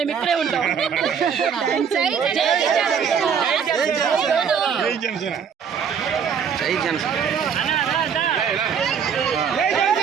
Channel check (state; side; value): quieter; left; 7.1 dB